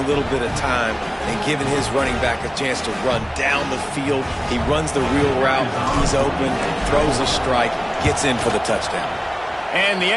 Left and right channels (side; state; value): both; identical; correlation 1.00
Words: little bit of time, and giving his running back a chance to run down the field. He runs the real route. He's open, throws a strike, gets in for the touchdown. And the